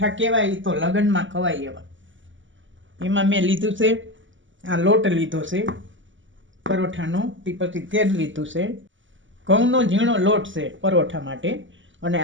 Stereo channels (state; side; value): late; left; 0.55 ms